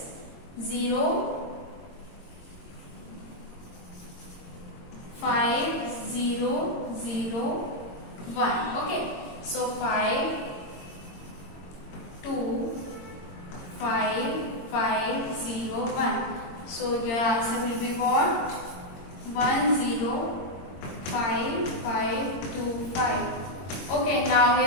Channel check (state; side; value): late; right; 22 ms